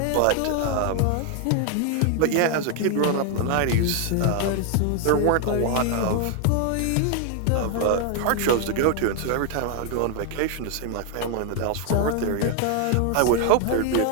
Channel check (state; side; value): different; both; correlation 0.00